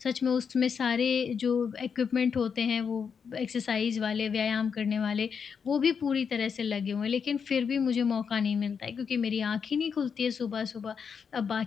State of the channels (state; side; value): quieter; right; 6.5 dB